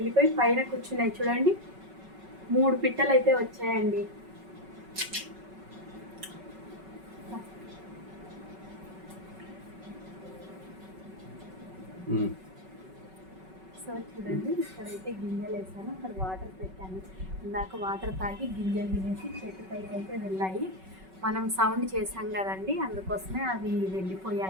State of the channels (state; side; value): late; left; 5.3 ms